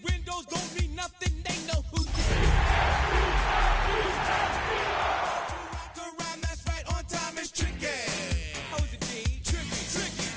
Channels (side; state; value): both; identical; correlation 1.00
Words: windows don't mean nothing, they know who you are. That's right, on time is tricky. How is it, G? Tricky.